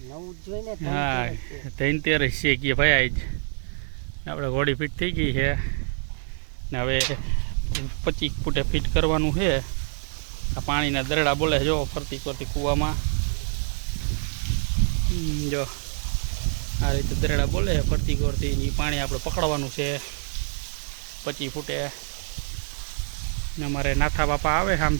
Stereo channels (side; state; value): left; silent; digital silence